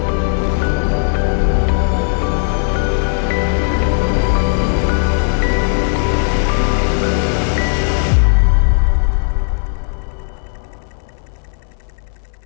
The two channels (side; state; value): right; silent; 59 dB below the other